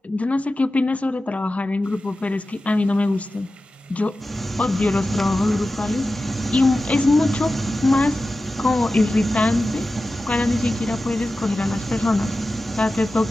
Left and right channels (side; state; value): both; normal; correlation 0.94